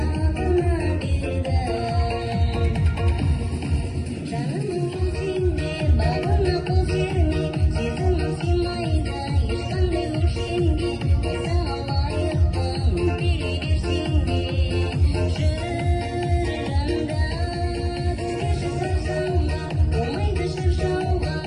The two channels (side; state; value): both; identical; correlation 1.00